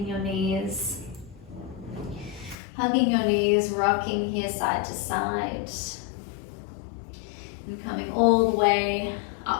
your knees, hugging your knees, rocking here side to side, and coming all the way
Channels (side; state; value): right; drops out; at 2.6 s